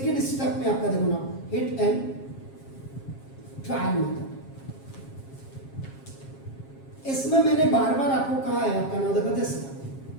स्टेप में आपका देखो ना हिट एंड ट्रायल मेथड। इसमें मैंने बार बार आपको कहा है, आपका नाम देखो दिस,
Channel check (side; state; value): right; late; 7.4 ms